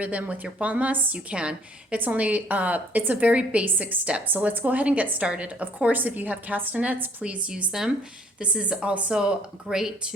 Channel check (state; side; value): normal; both; correlation 0.59